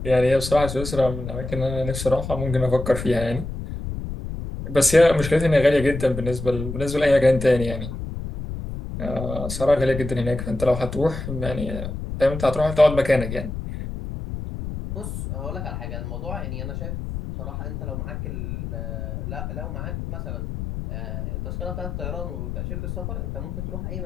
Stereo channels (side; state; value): left; noise; rumble, 6 dB below the sound